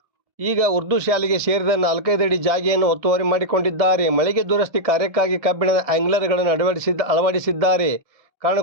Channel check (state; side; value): late; left; 1.7 ms